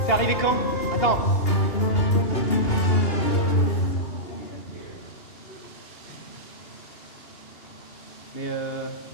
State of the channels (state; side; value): late; right; 2.8 ms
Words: C'est arrivé quand? Attends. Mais